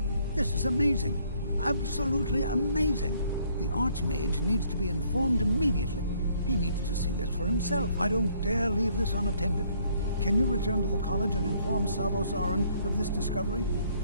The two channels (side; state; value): both; inverted; correlation -0.65